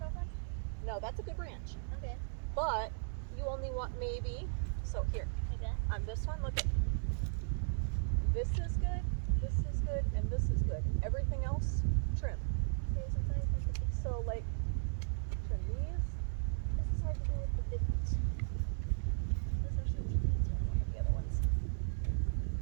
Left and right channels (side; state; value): left; silent; digital silence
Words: off then? No, that's a good branch, Okay. but you only want maybe, so here, Okay. on this one, look at, this is good, and this is good. Everything else, trim. So like, trim these. This is hard to do with the big ones. Those are some trees. Look at the other ones.